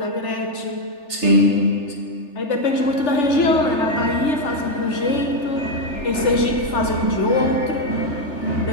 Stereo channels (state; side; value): late; right; 3.4 ms